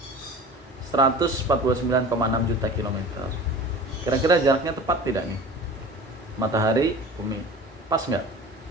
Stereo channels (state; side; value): normal; both; correlation 0.38